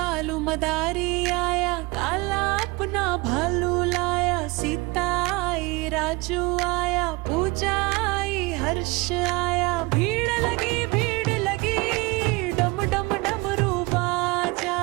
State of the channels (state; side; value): quieter; left; 24.5 dB